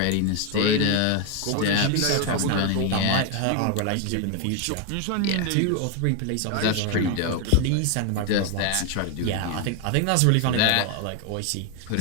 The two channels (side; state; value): both; different; correlation 0.01